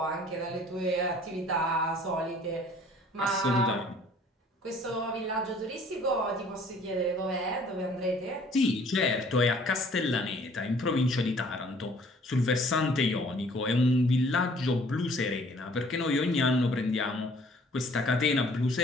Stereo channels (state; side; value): normal; both; correlation 0.56